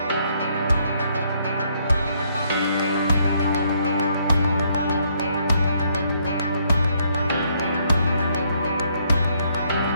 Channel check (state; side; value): inverted; both; correlation -0.71